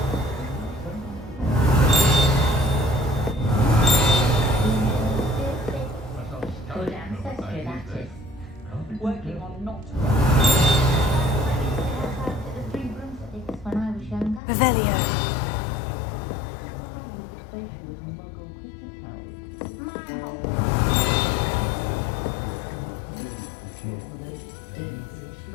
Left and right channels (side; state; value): right; drops out; at 14.4 s